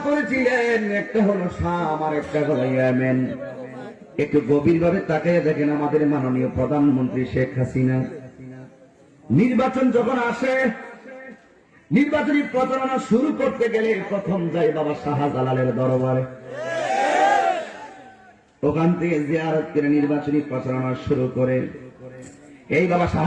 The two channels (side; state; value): both; identical; correlation 1.00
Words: করেছিলেন, একটা হলো শাম আর একটা হলো ইয়েমেন। একটু গভীরভাবে তাকিয়ে দেখেন, আমাদের মাননীয় প্রধানমন্ত্রী শেখ হাসিনা নির্বাচন যখন আসে, নির্বাচনী প্রচারণা শুরু করতে গেলে প্রথম যায় বাবা শাহজালালের দরবারে। ওখান থেকে জিয়ারত করে নির্বাচনী প্রচারণা শুরু করে। এই বাবা